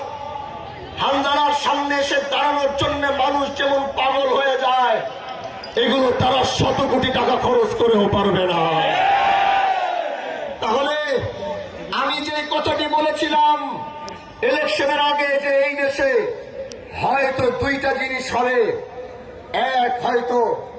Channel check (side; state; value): both; identical; correlation 1.00